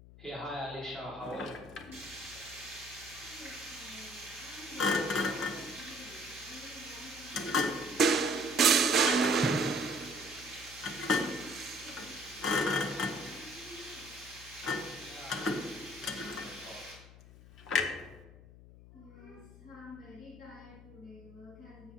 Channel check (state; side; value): noise; left; hum, 19 dB below the sound